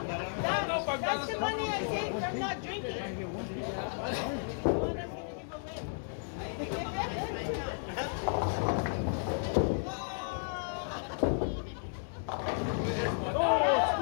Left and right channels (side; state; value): right; silent; digital silence